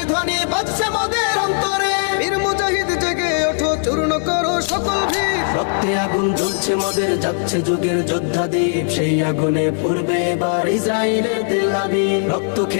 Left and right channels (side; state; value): right; silent; 64 dB below the other